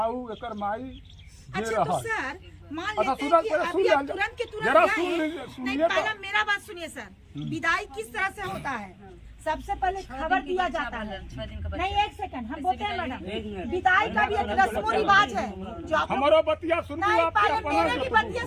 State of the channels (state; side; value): identical; both; correlation 1.00